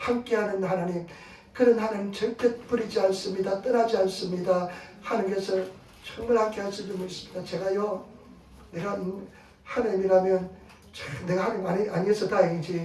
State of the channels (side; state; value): both; identical; correlation 1.00